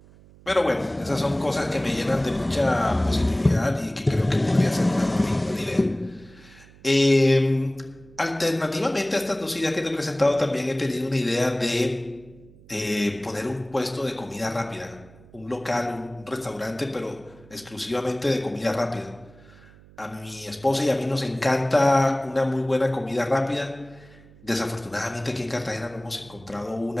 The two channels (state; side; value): noise; right; hum, 24 dB below the sound